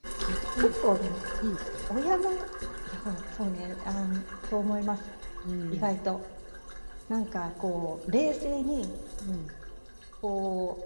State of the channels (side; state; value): both; inverted; correlation -1.00